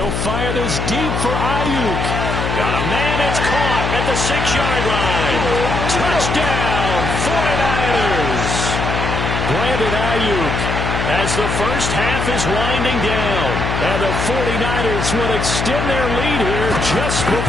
fire this deep for Ayuk. Got a man, it's caught at the 6-yard line. Touchdown, 49ers. Brandon Ayuk as the first half is winding down. And the 49ers will extend their lead here just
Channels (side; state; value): left; noise; hum, 2 dB below the sound